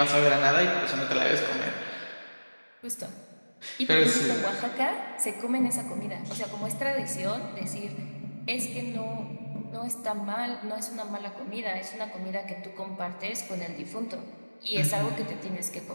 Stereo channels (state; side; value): inverted; both; correlation -1.00